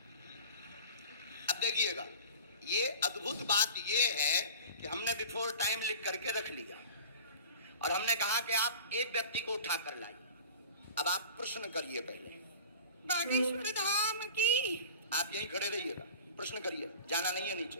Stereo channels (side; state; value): both; inverted; correlation -0.38